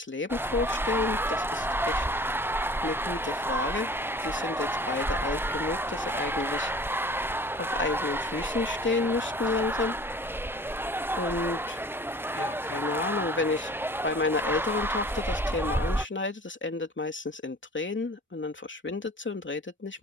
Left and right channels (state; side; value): normal; both; correlation 0.45